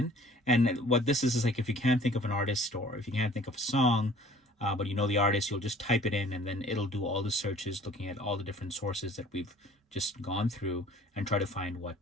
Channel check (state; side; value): normal; both; correlation 0.51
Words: And what this is like, if you can't think of an artist or if you can't think of a song, but you know the artist, you'll just type it in and then it'll do all the searches looking at all the different sources that we've just gone through and try to find what